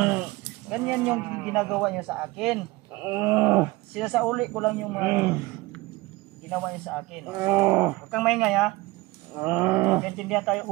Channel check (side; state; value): left; quieter; 21.0 dB